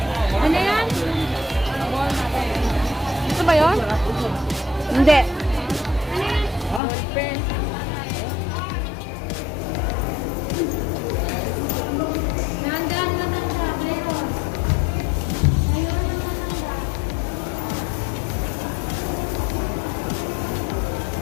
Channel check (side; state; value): right; drops out; at 6.8 s